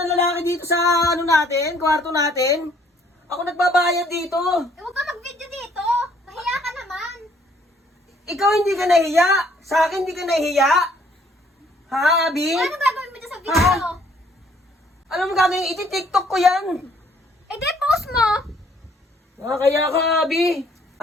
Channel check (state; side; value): normal; both; correlation 0.63